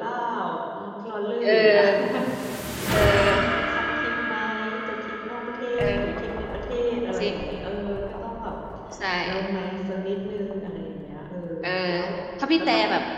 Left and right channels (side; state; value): both; identical; correlation 1.00